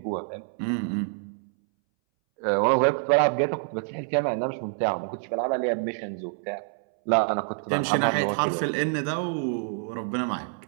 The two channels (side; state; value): left; silent; 60 dB below the other